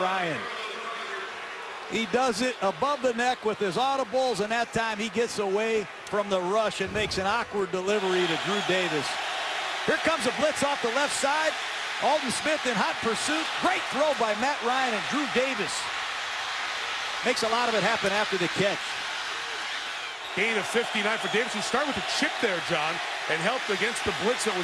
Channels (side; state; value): both; identical; correlation 1.00